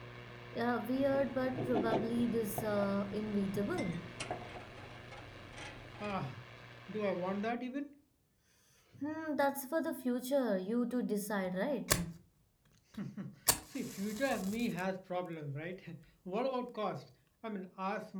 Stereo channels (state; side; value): identical; both; correlation 1.00